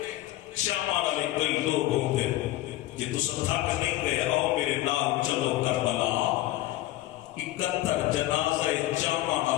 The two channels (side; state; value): right; quieter; 16.1 dB